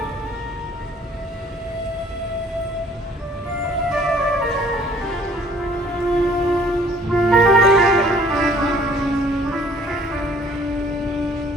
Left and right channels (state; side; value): normal; both; correlation 0.56